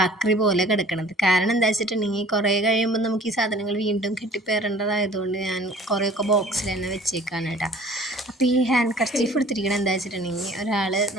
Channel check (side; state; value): both; normal; correlation 0.50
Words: ആക്രി പോലെ കിടക്കുന്നത്. കാരണം എന്താ വെച്ചിട്ടുണ്ടെങ്കിൽ കുറേ കഴിയുമ്പോൾ നമുക്ക് ഈ സാധനങ്ങൾ വീണ്ടും കെട്ടിപ്പേറേണ്ടതായതുകൊണ്ട് ഞാൻ കുറേയൊക്കെ ബോക്സിൽ തന്നെ വെച്ചേക്കാണ് കേട്ടോ. അപ്പോൾ ഈ ഹാൻഡ് കർച്ചീഫ് എടുത്തിരിക്കണം എന്താ വെച്ചിട്ടുണ്ടെങ്കിൽ ഒരാൾ